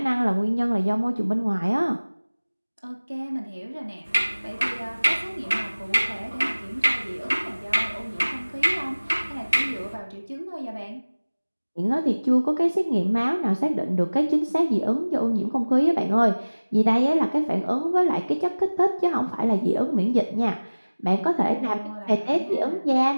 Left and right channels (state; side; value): inverted; both; correlation -1.00